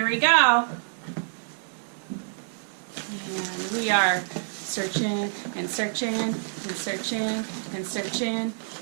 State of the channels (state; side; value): silent; left; 60 dB below the other